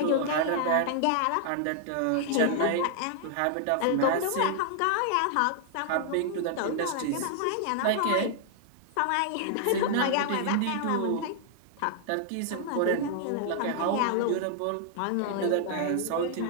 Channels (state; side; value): different; both; correlation -0.01